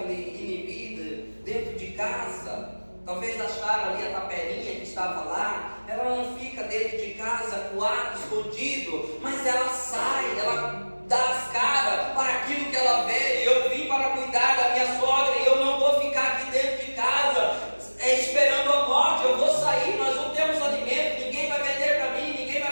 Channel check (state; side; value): inverted; both; correlation -1.00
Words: inibida dentro de casa. Talvez acharam ali a tapelinha que estava lá. Ela não fica dentro de casa, coado, escondido, mas ela sai, ela dá as caras para aquilo que ela vê. Eu vim para cuidar da minha sogra e eu não vou ficar aqui dentro de casa esperando a morte. Eu vou sair, nós não temos alimento, ninguém vai vender para mim, ninguém